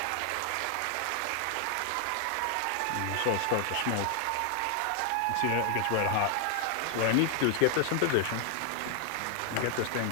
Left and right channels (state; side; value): different; both; correlation 0.00